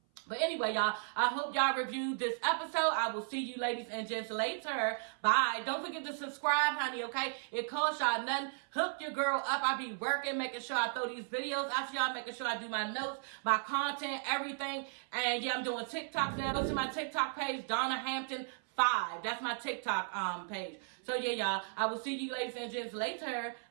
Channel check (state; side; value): silent; left; 54 dB below the other